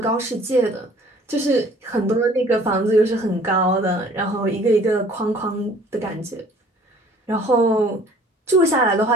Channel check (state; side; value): normal; both; correlation 0.53